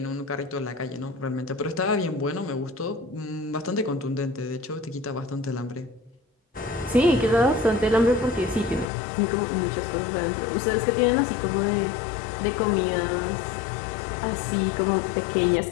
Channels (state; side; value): drops out; right; at 8.8 s